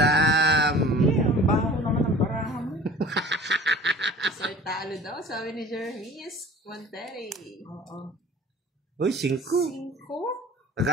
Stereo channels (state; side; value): normal; both; correlation 0.43